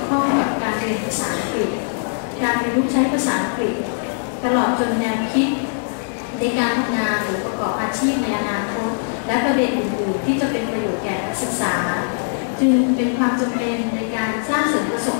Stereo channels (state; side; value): silent; right; 56 dB below the other